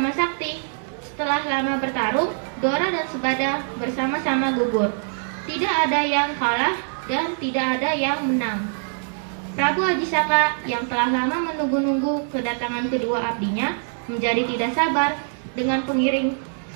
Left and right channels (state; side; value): silent; left; digital silence